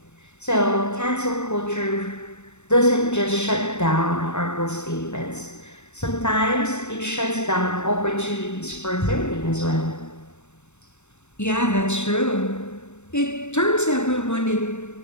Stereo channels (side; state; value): right; late; 0.82 ms